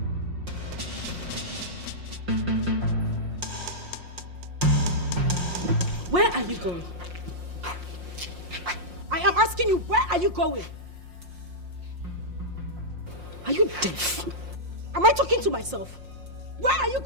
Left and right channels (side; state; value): left; late; 5.6 ms